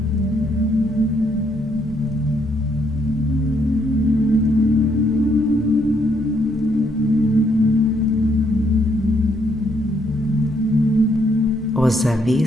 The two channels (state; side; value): normal; both; correlation 0.72